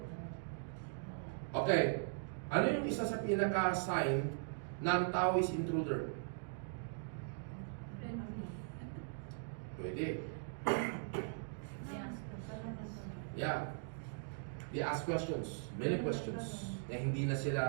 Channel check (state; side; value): silent; left; digital silence